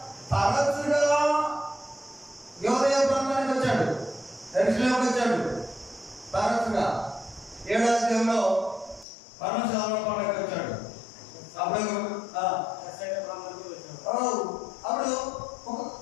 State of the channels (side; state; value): right; drops out; at 9.1 s